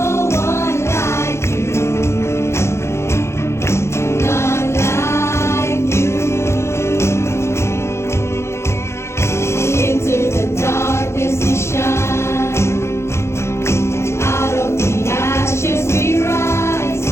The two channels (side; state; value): right; late; 0.13 ms